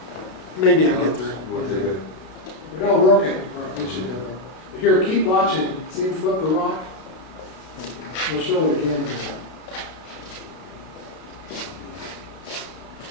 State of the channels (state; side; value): late; right; 32 ms